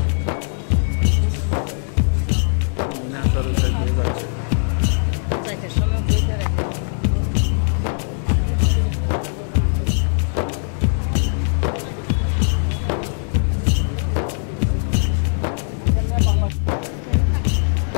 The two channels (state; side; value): silent; right; 65 dB below the other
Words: সময় বইতে রাখি